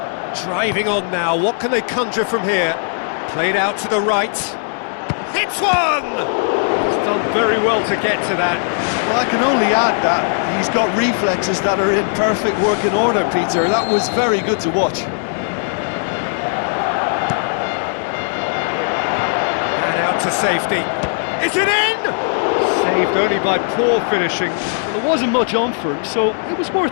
Driving on now, what can they conjure from here? Played out to the right. Hits one! He's done very well to get to that. Well, I can only add that he's got reflexes that are in perfect working order, Peter. That was very good to watch. And out to safety. Is it in? Saved only by poor finishing. Well, there wasn't much on for him, so it was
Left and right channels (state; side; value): silent; right; 67 dB below the other